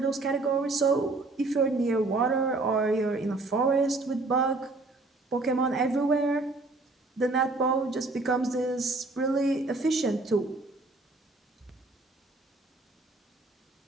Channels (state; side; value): quieter; left; 3.2 dB